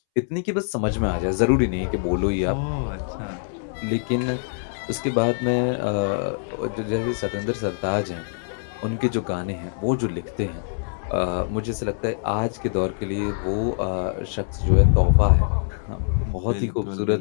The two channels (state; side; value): silent; right; 63 dB below the other